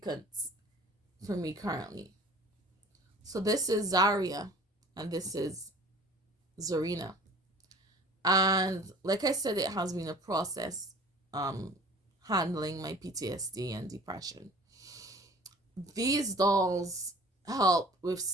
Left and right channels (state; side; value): normal; both; correlation 0.46